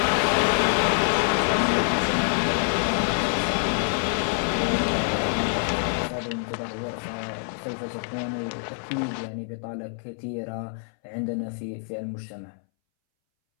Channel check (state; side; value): silent; right; 61 dB below the other